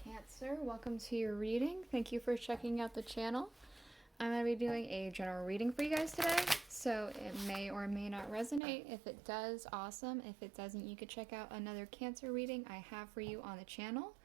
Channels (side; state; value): left; drops out; at 8.6 s